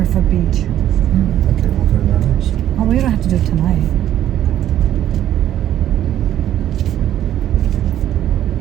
Beach. Okay, we'll go to that house. Oh, we don't have to do it tonight.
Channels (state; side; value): quieter; left; 11.7 dB